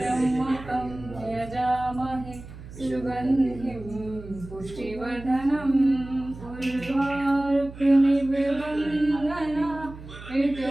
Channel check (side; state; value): right; noise; hum, 15 dB below the sound